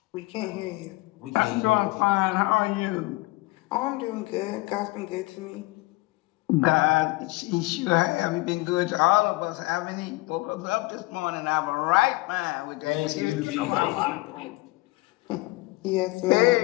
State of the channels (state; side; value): quieter; right; 21.9 dB